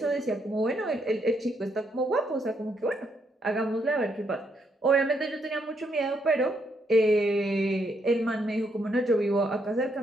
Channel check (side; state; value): both; normal; correlation 0.75